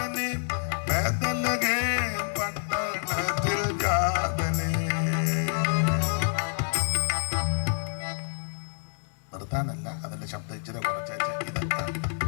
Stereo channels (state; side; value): silent; right; 59 dB below the other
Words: ബേത്ലഹേം പട്ടണത്തിൽ ജാതനെ. നിർത്താനല്ല, അതിന്റെ ശബ്ദം ഇച്ചിരി കുറച്ചേച്ച് ഇതെത്താം.